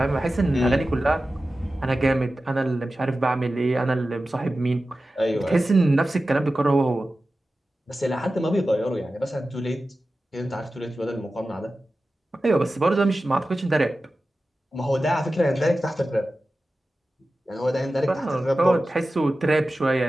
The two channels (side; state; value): both; normal; correlation 0.94